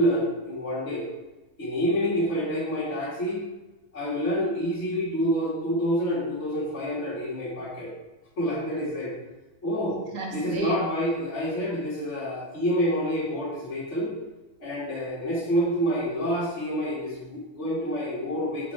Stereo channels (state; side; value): normal; both; correlation 0.12